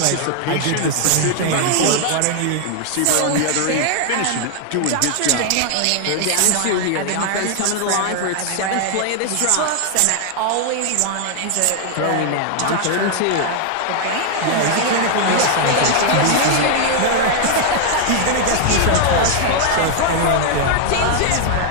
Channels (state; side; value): different; both; correlation 0.00